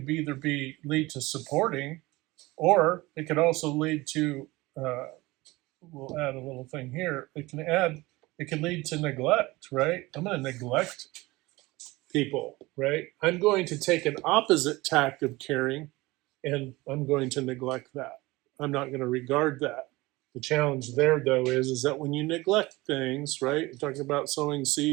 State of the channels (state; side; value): quieter; left; 20.9 dB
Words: either lead to supporting, or it could also lead to we'll add a little thing here. It can lead to neglect, right? I'm going to neglect people, right? I'm going to take an opposite tack of caring, and I'm going to neglect that. I'm not going to regard that. The challenge there, though, is that when you neglect things, right? We're talking about sowing